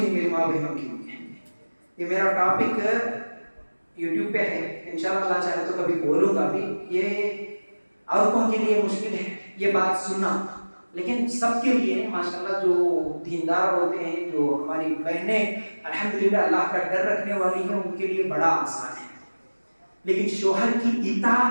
میری ماں بہنوں کے لیے. یہ میرا ٹاپک یوٹیوب پہ ہے, انشاءاللہ اللہ چاہے تو کبھی بولوں گا بھی. یہ عورتوں کے لیے مشکل ہے یہ بات سننا, لیکن سب کے لیے ماشاءاللہ جو دیندار ہوتے ہیں, جو ہماری بہنیں الحمدللہ اللہ کا ڈر رکھنے والی ہیں, ان کے لیے بڑا آسان ہے. لیکن شوہر کی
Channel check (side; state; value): both; inverted; correlation -1.00